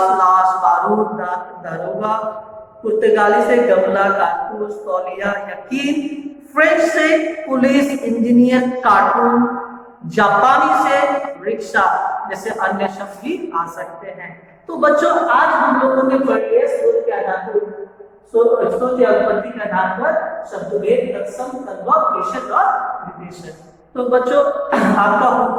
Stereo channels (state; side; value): identical; both; correlation 1.00